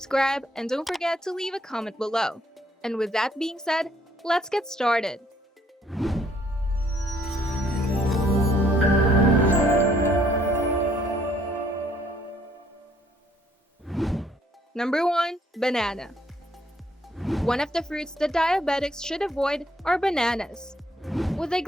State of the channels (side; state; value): both; normal; correlation 0.66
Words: and don't forget to leave a comment below. And with that being said, let's get started. Number 1. Banana. One of the fruits that diabetics should avoid are bananas. With a